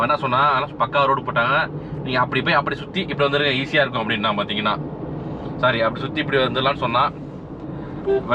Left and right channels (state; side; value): identical; both; correlation 1.00